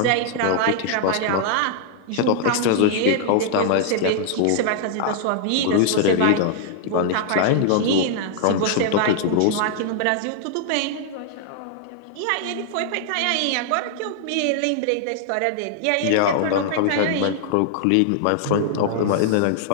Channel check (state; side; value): different; both; correlation -0.01